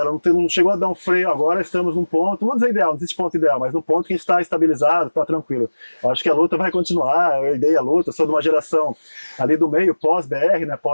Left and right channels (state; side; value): inverted; both; correlation -1.00